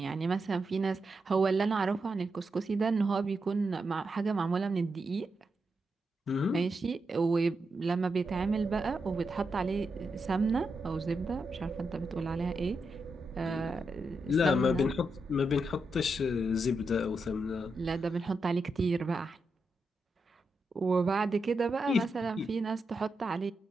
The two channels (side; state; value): both; normal; correlation 0.85